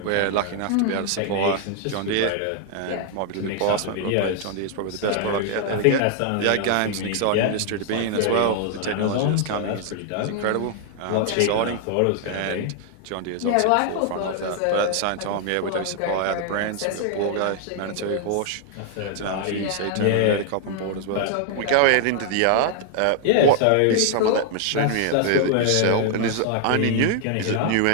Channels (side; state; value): both; different; correlation 0.00